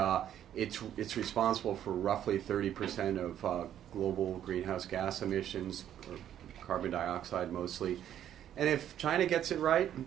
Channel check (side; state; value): left; quieter; 10.7 dB